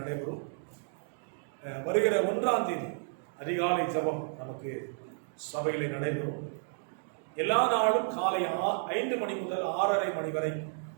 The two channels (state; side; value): silent; left; digital silence